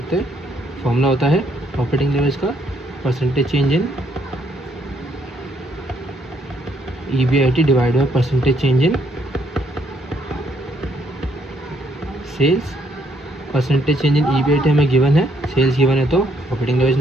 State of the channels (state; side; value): normal; both; correlation 0.71